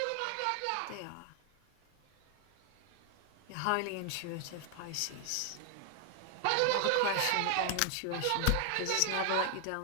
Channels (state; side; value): different; both; correlation 0.00